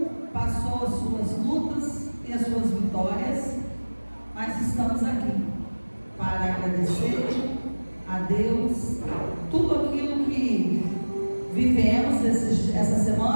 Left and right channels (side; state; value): both; inverted; correlation -1.00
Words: passou as suas lutas e as suas vitórias, mas estamos aqui para agradecer a Deus tudo aquilo que vivemos essa